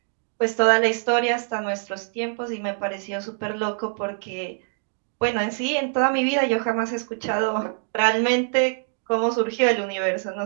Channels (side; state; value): left; silent; digital silence